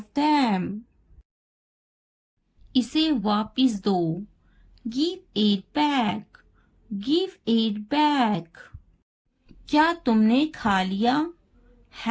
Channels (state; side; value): identical; both; correlation 1.00